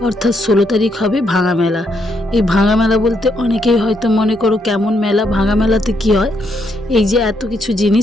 অর্থাৎ 16 তারিখ হবে ভাঙা মেলা। এই ভাঙা মেলা বলতে অনেকেই হয়তো মনে করো কেমন মেলা, ভাঙা মেলাতে কি হয়, এই যে এত কিছু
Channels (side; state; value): both; normal; correlation 0.76